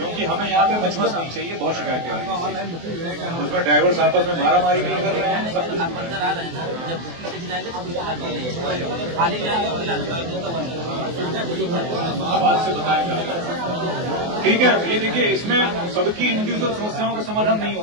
हमें यहाँ पे मचमच नहीं चाहिए। बहुत शिकायतें आ रही हैं, उसमें ड्राइवर्स आपस में मारामारी भी कर रहे हैं, सब कुछ आप अंदर आ रहे हैं ना, जब बुकिंग लेके जाएंगे तो बुकिंग खाली जाएंगे आवाज से बताया जा रहा है। ठीक है, ये देखिए, इसमें सबकी इंडिविजुअल समस्याओं का समाधान नहीं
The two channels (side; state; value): left; late; 24 ms